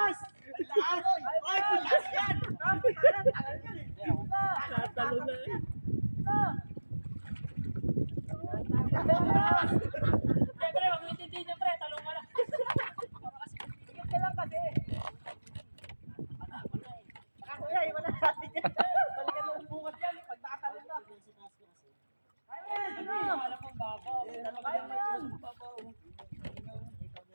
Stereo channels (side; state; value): both; inverted; correlation -1.00